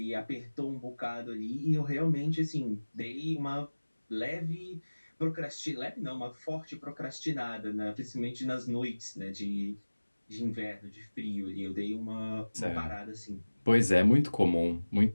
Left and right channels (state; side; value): inverted; both; correlation -1.00